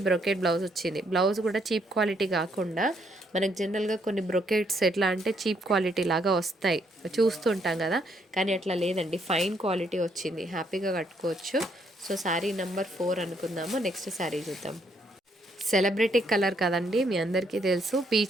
బ్రొకెట్ బ్లౌజ్ వచ్చింది. బ్లౌజ్ కూడా చీప్ క్వాలిటీ కాకుండా, మనకు జనరల్గా కొన్ని బ్రొకెట్స్ ఎట్లా అంటే చీప్ క్వాలిటీ లాగా వస్తాయి, చూస్తుంటాం కదా, కానీ అట్లా లేదండి, ఫైన్ క్వాలిటీ వచ్చింది, హ్యాపీగా కట్టుకోవచ్చు. సో శారీ నెంబర్ 4 అనుకుందాము. నెక్స్ట్ శారీ చూద్దాం. సెలబ్రిటీ కలర్ కదండి, మీ అందరికీ తెలుసు,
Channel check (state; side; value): normal; both; correlation 0.71